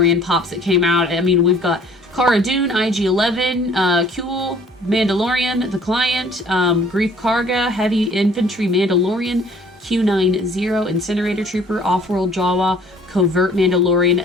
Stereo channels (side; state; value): both; normal; correlation 0.55